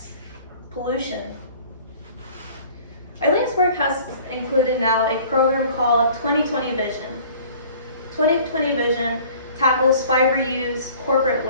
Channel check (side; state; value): both; inverted; correlation -0.50